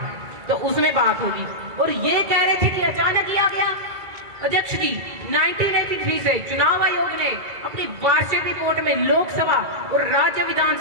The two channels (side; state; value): left; late; 2.3 ms